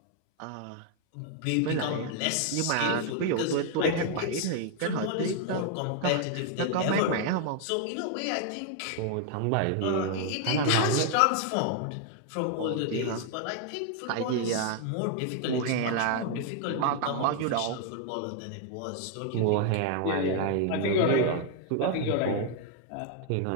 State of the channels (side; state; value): both; different; correlation 0.00